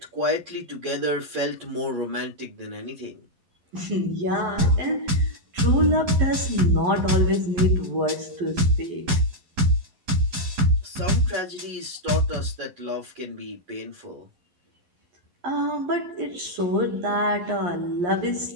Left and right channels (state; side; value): late; left; 11 ms